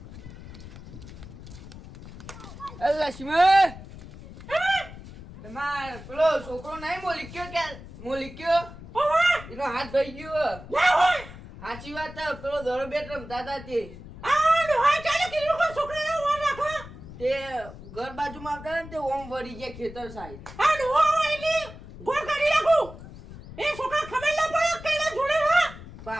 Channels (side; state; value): left; noise; rumble, 15 dB below the sound